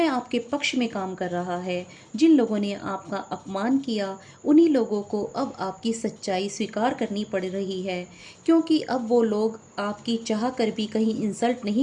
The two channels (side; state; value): both; identical; correlation 1.00